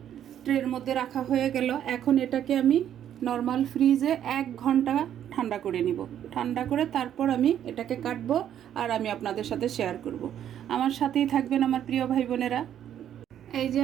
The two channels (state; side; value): quieter; left; 10.3 dB